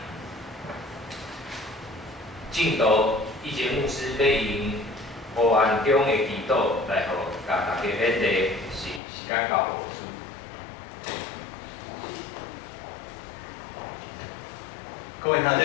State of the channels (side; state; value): right; drops out; at 9.0 s